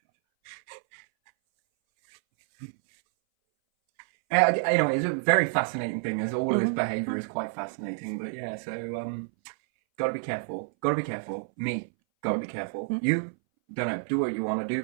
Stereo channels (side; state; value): left; silent; 59 dB below the other